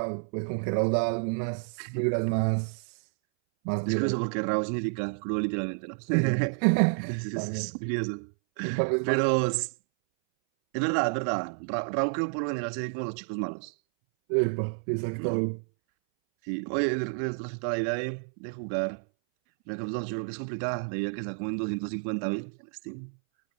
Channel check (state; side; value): silent; left; 58 dB below the other